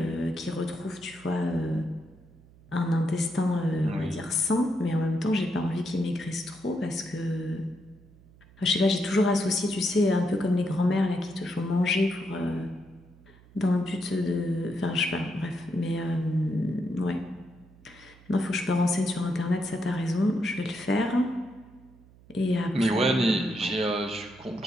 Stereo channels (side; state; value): right; noise; hum, 25 dB below the sound